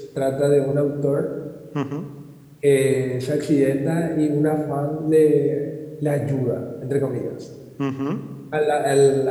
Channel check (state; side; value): identical; both; correlation 1.00